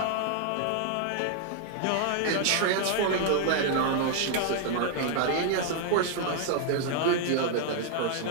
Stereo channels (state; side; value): different; both; correlation 0.00